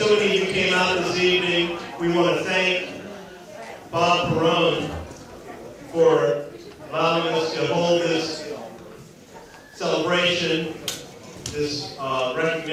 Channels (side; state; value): both; identical; correlation 1.00